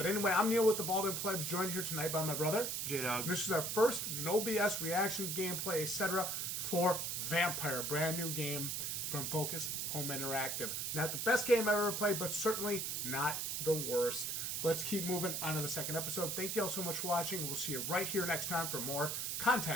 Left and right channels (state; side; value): noise; right; hiss, 1 dB below the sound